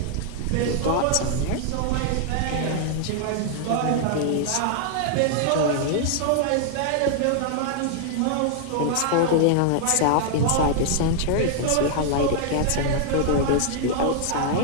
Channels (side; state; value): both; different; correlation 0.00